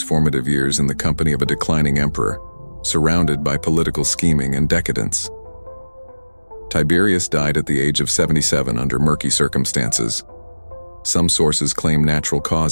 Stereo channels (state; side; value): inverted; both; correlation -1.00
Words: formative years in the company of a declining emperor, surrounded by political scheming and decadence. Tiberius died at the age of 77 under murky circumstances. Some sources claim natural